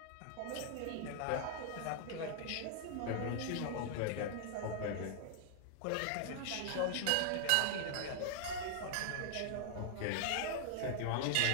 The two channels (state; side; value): different; both; correlation 0.00